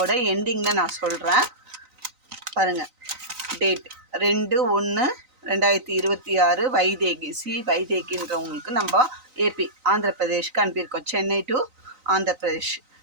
எண்டிங்கில் நான் சொல்கிறேன். பாருங்கள், டேட் 2/1/2026 வைதேகின்றவங்களுக்கு நம்ம ஏபி ஆந்திர பிரதேஷ்க்கு அனுப்பியிருக்கோம். சென்னை டு ஆந்திர பிரதேஷ்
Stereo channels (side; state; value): left; late; 3.9 ms